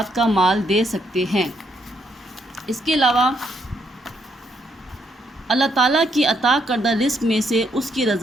کا مال دے سکتے ہیں۔ اس کے علاوہ اللہ تعالیٰ کی عطا کردہ رزق میں سے اس کی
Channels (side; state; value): both; normal; correlation 0.74